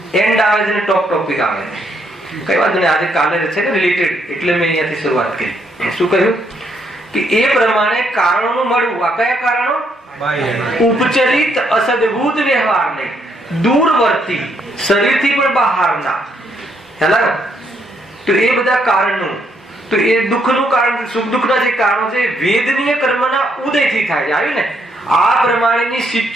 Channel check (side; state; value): both; normal; correlation 0.73